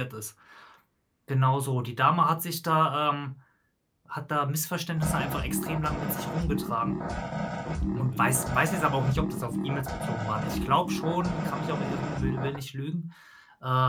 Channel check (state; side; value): identical; both; correlation 1.00